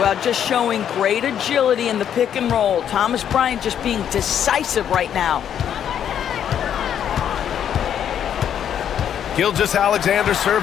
just showing great agility in the pick and roll. Thomas Bryant just being decisive right now. Gilgeous-Alexander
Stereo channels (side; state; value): right; quieter; 9.3 dB